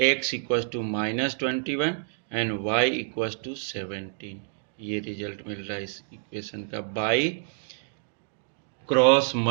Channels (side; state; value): left; silent; digital silence